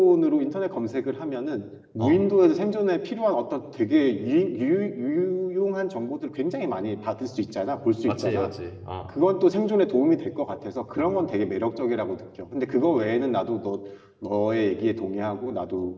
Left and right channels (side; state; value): both; identical; correlation 1.00